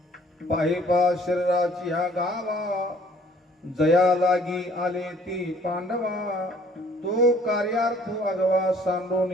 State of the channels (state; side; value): normal; both; correlation 0.57